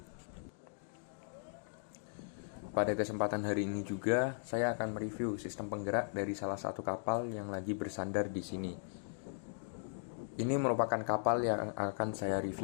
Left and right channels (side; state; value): right; silent; digital silence